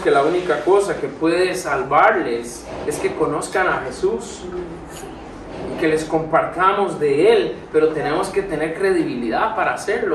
la única cosa que puede salvarles es que conozcan a Jesús y que les compartamos de Él, pero tenemos que tener credibilidad para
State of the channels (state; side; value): identical; both; correlation 1.00